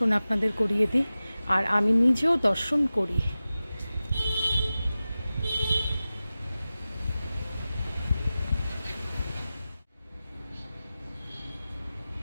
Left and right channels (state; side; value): inverted; both; correlation -0.95